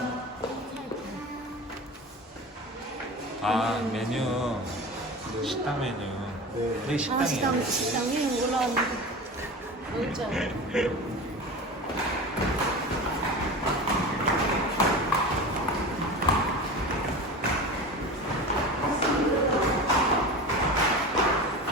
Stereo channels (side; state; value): both; normal; correlation 0.31